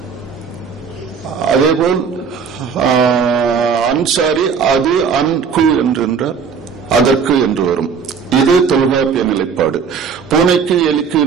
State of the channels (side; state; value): left; quieter; 6.1 dB